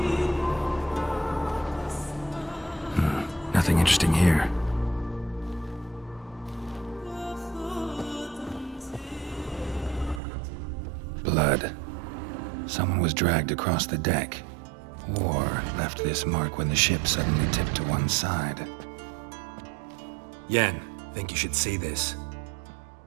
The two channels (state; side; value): drops out; left; at 10.2 s